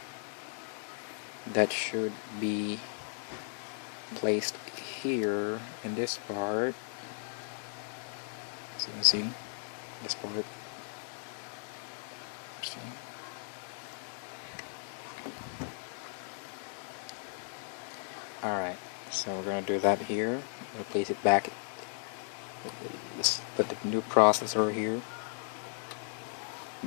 that should be placed here in this part. So you can see this part. See? Alright, so we're going to do that here. I'm going to place it back. Put the new processor here.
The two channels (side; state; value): right; silent; 54 dB below the other